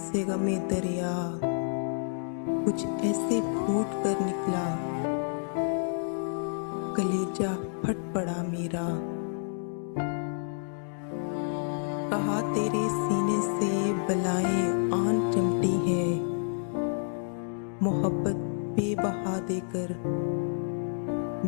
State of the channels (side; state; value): right; silent; digital silence